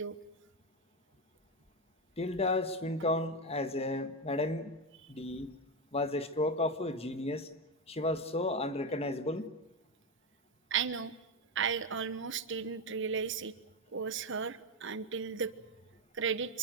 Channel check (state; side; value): normal; both; correlation 0.12